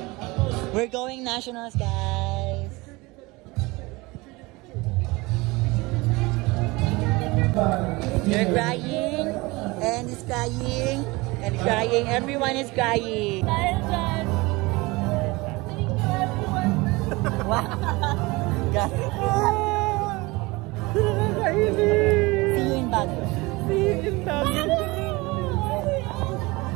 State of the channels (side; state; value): left; quieter; 23.2 dB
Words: We're going nationals, guys. You're crying, and he's crying, and crying. Everyone is crying. Wow. See you in Baguio. See you in Baguio.